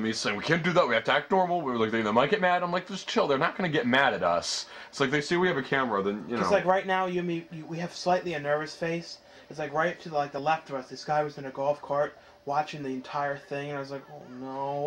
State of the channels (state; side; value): identical; both; correlation 1.00